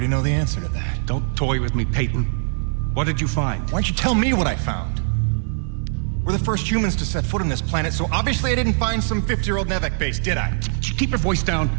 know the answer to that. Don't toy with me, Peyton. What did you find? Why don't you tell me what I found? We're the first humans to set foot on this planet, so obviously I didn't find some 50-year-old Nevek base, did I? Keep your voice down.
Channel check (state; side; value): silent; left; 64 dB below the other